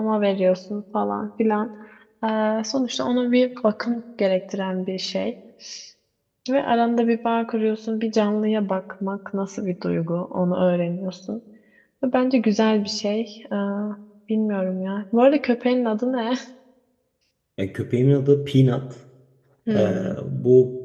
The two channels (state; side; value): identical; both; correlation 1.00